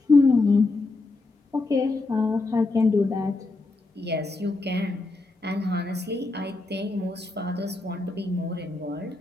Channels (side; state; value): right; quieter; 3.3 dB